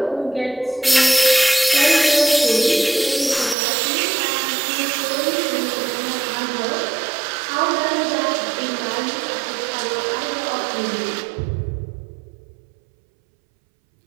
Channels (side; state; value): left; drops out; at 3.6 s